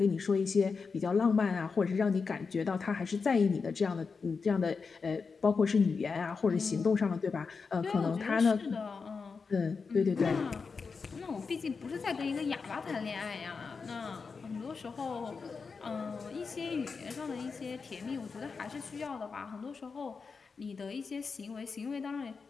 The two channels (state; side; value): quieter; right; 5.0 dB